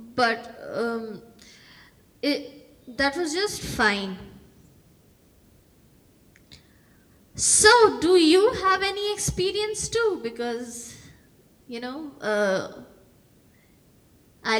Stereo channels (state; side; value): identical; both; correlation 1.00